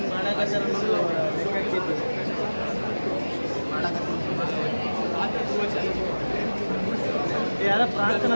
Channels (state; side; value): inverted; both; correlation -1.00